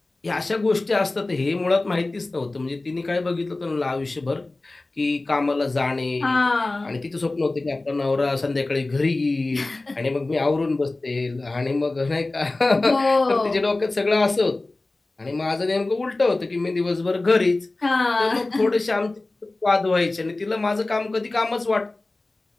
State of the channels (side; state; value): right; quieter; 3.1 dB